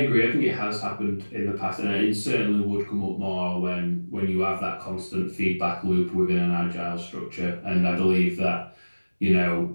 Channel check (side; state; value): both; inverted; correlation -1.00